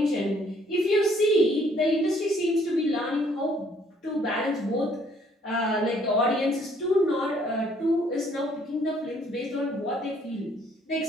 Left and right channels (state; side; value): normal; both; correlation 0.63